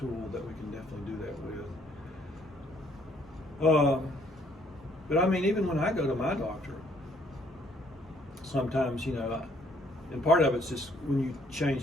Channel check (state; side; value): normal; both; correlation 0.64